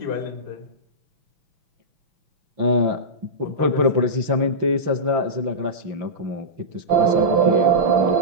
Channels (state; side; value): late; left; 5.8 ms